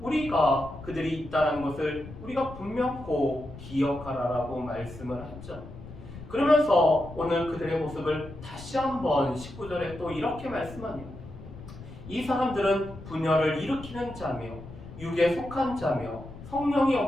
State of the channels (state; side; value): noise; left; rumble, 14 dB below the sound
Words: 우리가 그들이 있다는 것을 우리가 분명코 기억하라라고 말씀을 하죠. 그러면서 오늘 그들의 모습을 다시 한번 19절에 또 이렇게 말씀합니다. 이 사람들은 분열을 일으키는 자며 육에 속한 자며 성령이